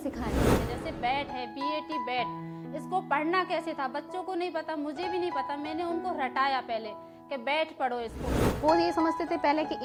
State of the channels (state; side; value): identical; both; correlation 1.00